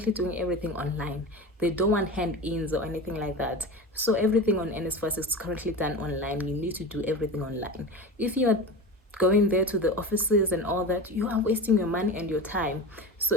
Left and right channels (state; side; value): normal; both; correlation 0.29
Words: doing everything online. They don't want hand-ins or anything like that. So everything on Nsfas is currently done online. You need to do everything online. If you are going there to the offices and all that, you are wasting your money and your time. So